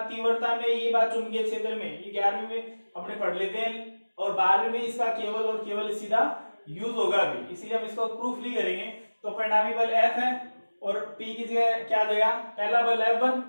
तीव्रता में, ये बात चुंबकीय क्षेत्र में, ये 11वीं में अपने पढ़ लेते हैं, और 12वीं में इसका केवल और केवल सीधा यूज होगा भी, इसलिए हम इसको प्रूफ नहीं करेंगे। तो परिणामी बल F है, और P की जगह क्या देगा, पहला बल F1,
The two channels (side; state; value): both; inverted; correlation -1.00